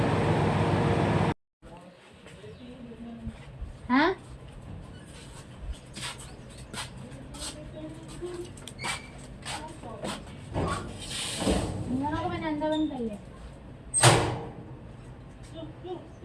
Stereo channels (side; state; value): both; identical; correlation 1.00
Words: हाँ, मैंने अंदर बंद कर लिया।